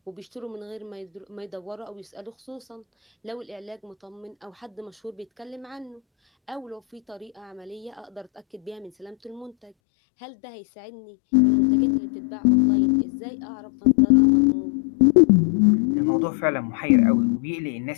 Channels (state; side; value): drops out; right; at 9.7 s